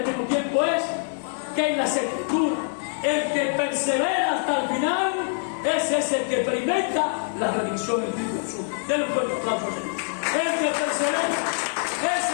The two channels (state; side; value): silent; right; 62 dB below the other